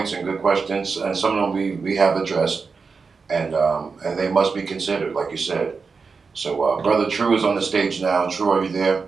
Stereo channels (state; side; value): quieter; left; 4.9 dB